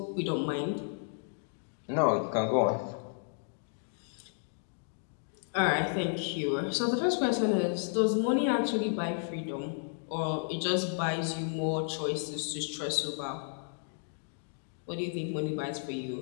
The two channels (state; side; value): silent; right; digital silence